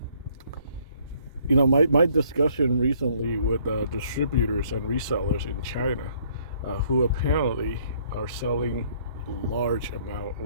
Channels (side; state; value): both; inverted; correlation -0.63